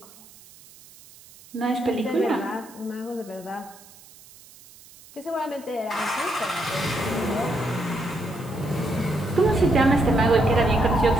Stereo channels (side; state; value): right; noise; hiss, 23 dB below the sound